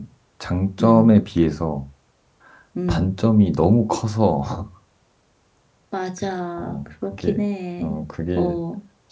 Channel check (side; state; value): both; identical; correlation 1.00